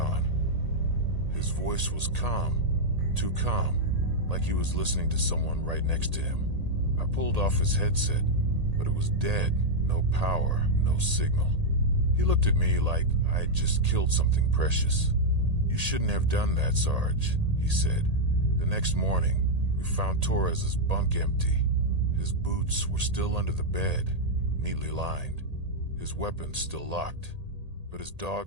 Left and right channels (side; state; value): left; late; 1.8 ms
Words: His voice was calm, too calm, like he was listening to someone right next to him. I pulled off his headset, but it was dead. No power, no signal. He looked at me like I had just killed something precious. "You shouldn't have done that, Sarge," he said. The next morning, we found Torres's bunk empty. His boots were still under the bed, neatly lined. His weapons still locked, but his